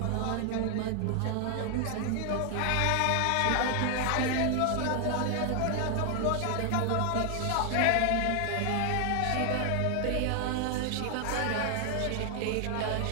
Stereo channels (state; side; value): different; both; correlation 0.00